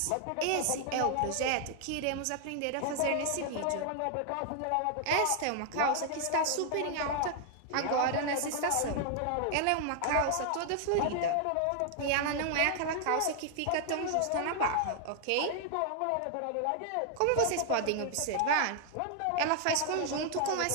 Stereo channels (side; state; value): both; different; correlation 0.00